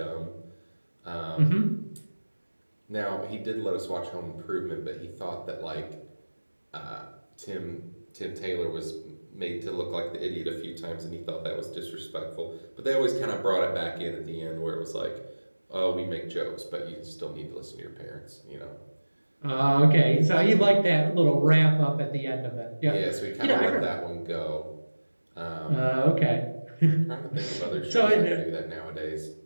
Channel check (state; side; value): inverted; both; correlation -1.00